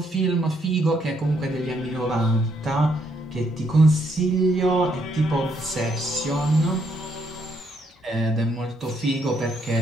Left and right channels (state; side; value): normal; both; correlation 0.73